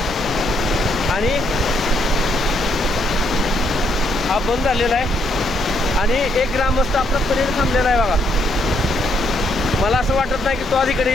आणि हा बंद झालेला आहे आणि एक ग्रामस्थ आपला पलीकडे थांबलेला आहे बघा। मला असं वाटत नाही की तो अधिकारी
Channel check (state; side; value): normal; both; correlation 0.73